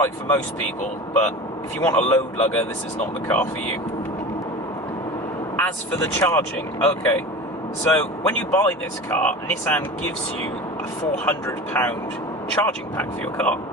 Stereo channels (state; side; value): normal; both; correlation 0.33